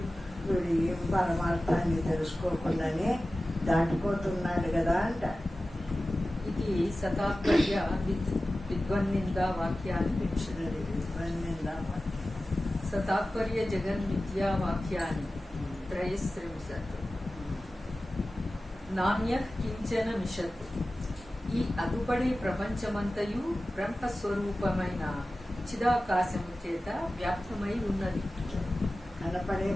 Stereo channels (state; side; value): normal; both; correlation 0.95